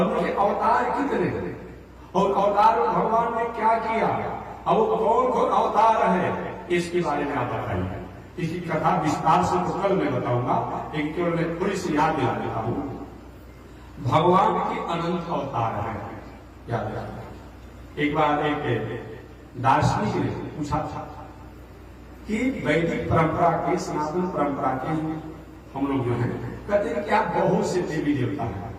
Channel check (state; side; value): identical; both; correlation 1.00